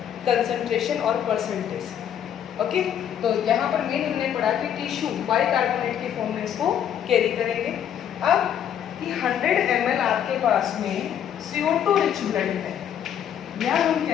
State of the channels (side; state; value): right; quieter; 9.5 dB